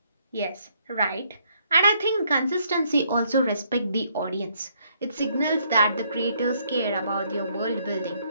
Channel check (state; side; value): inverted; both; correlation -0.69